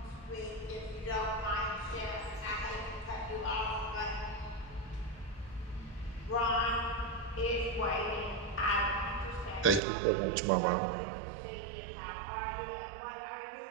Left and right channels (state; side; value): drops out; left; at 9.8 s